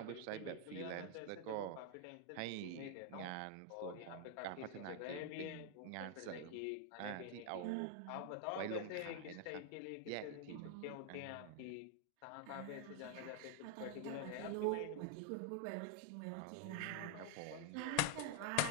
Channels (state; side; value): different; both; correlation 0.00